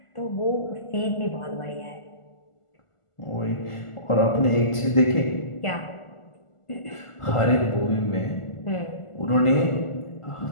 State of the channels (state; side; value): late; right; 1.5 ms